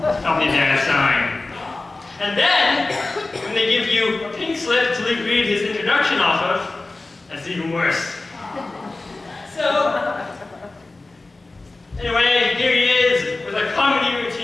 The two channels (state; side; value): quieter; right; 3.2 dB